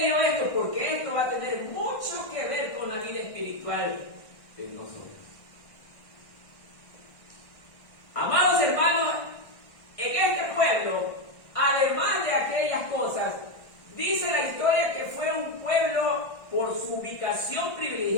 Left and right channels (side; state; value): right; late; 1.6 ms